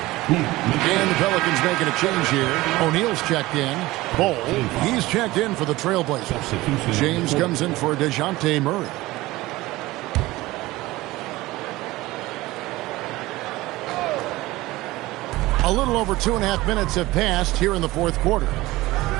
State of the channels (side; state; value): left; quieter; 18.9 dB